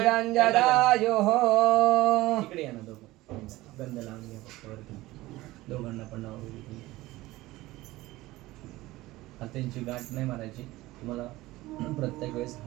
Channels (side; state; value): left; quieter; 18.3 dB